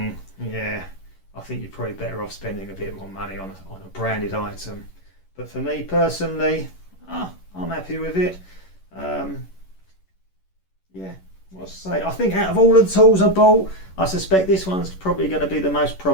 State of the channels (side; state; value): right; late; 11 ms